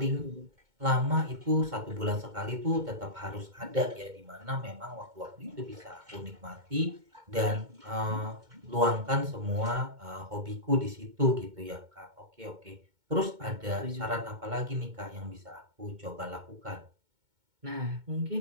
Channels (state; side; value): late; left; 2.2 ms